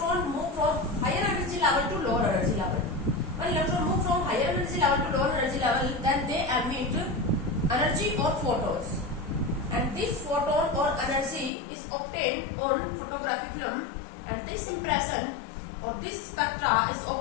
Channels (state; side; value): drops out; right; at 11.5 s